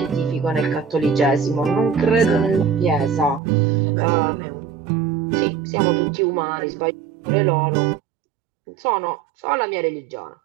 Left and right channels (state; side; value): drops out; left; at 3.4 s